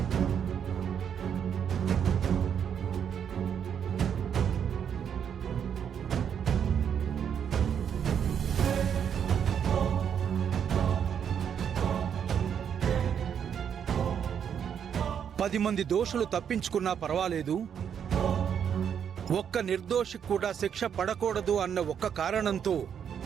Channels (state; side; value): quieter; left; 8.1 dB